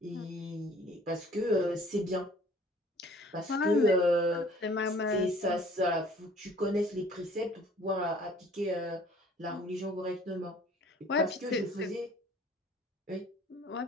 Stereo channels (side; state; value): both; normal; correlation 0.54